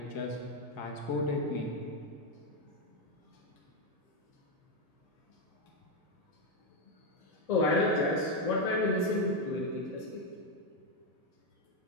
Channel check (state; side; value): late; right; 2.0 ms